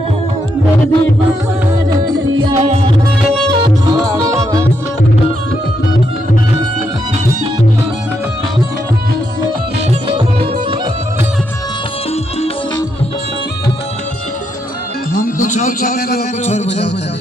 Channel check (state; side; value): normal; both; correlation 0.79